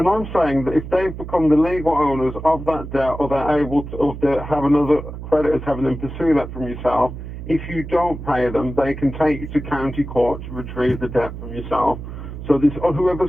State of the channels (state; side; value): noise; right; hum, 10 dB below the sound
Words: I'm saying that if they've become the legal owners of that debt, or they're able to, or they have another creditors having them pursue that from yourself, If you don't pay them, they can take you to county court to retrieve the debt from yourself. So this, or